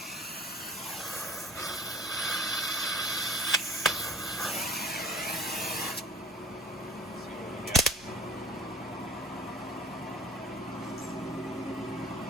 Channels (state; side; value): normal; both; correlation 0.49